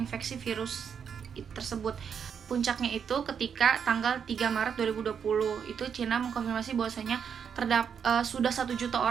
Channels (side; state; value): left; quieter; 7.3 dB